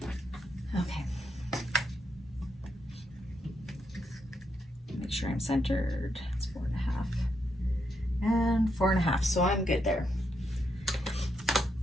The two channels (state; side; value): normal; both; correlation 0.80